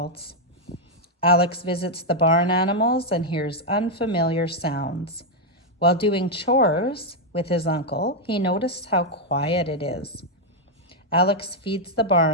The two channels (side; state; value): both; normal; correlation 0.00